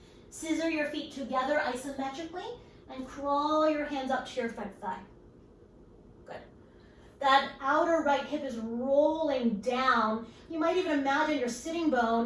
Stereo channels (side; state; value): both; identical; correlation 1.00